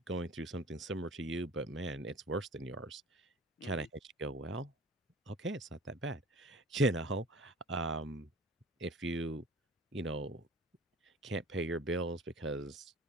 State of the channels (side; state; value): both; normal; correlation 0.43